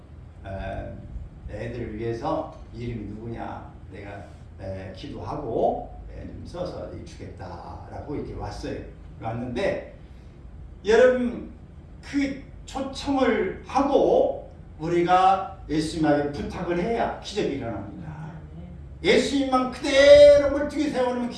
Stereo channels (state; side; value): identical; both; correlation 1.00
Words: 애들을 위해서 이름이 누구냐 내가 기도하고 좀 써서 주겠다라고 이렇게 왔어요. 왔는데 여러분 그 초청을 하고 우리가 예수님에게 부탁을 해야 기적이 일어납니다. 예수님만 그대로 멀뚱히 세워놓으면